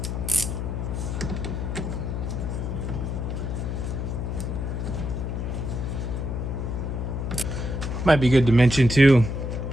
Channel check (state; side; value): noise; left; hum, 2 dB below the sound